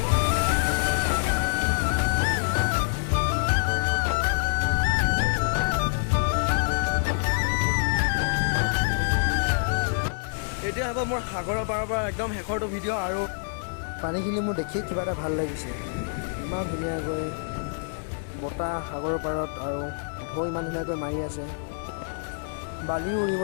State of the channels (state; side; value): silent; right; digital silence